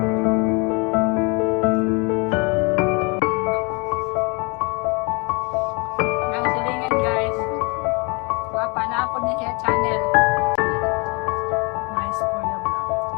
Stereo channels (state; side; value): quieter; right; 30.3 dB